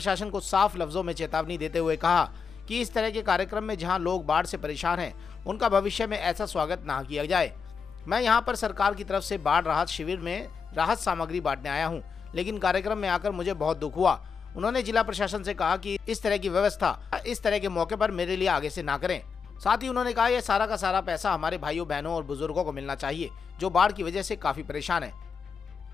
को साफ लफ्जों में चेतावनी देते हुए कहा कि इस तरह के कार्यक्रम में जहां लोग बाढ़ से परेशान हैं, उनका भविष्य में ऐसा स्वागत ना किया जाए। मैं यहां पर सरकार की तरफ से बाढ़ राहत शिविर में राहत सामग्री बांटने आया हूं, लेकिन कार्यक्रम में आकर मुझे बहुत दुख हुआ। उन्होंने जिला प्रशासन से कहा कि इस तरह की व्यवस्था इस तरह के मौके पर मेरे लिए आगे से ना करें। साथ ही उन्होंने कहा यह सारा का सारा पैसा हमारे भाइयों बहनों और बुजुर्गों को मिलना चाहिए जो बाढ़ की वजह से काफी परेशान है।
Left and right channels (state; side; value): quieter; right; 5.8 dB